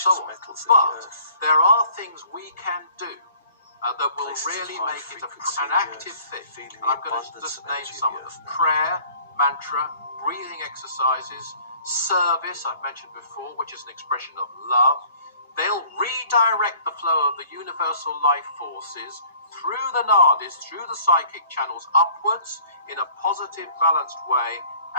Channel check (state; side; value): inverted; both; correlation -0.54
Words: so on. metals in the But earth. there are things we can do that will Places of really high make it frequency an in the active earth, thing. feeling And I'm the going to abundance just of name energy in some the of them: earth now. prayer, mantra, breathing exercises, service, I've mentioned before, which is an expression of love. They'll redirect the flow of the universal life forces through the nadis, through the psychic channels, upwards in a positive, balanced way,